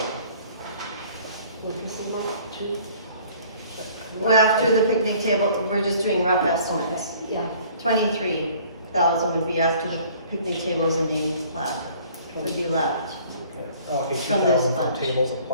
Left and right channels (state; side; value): inverted; both; correlation -0.54